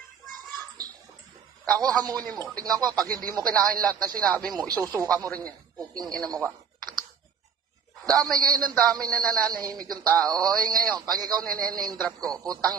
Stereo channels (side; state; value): left; quieter; 6.9 dB